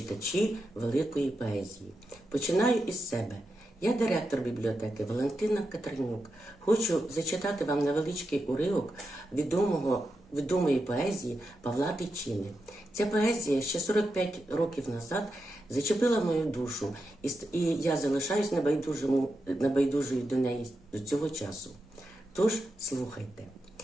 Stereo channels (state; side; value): normal; both; correlation 0.88